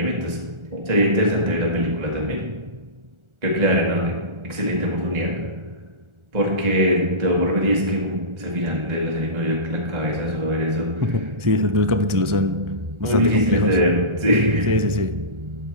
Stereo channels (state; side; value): late; left; 1.4 ms